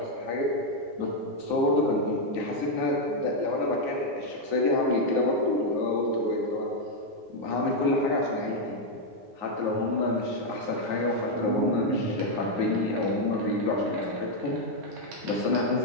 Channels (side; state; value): left; late; 9.4 ms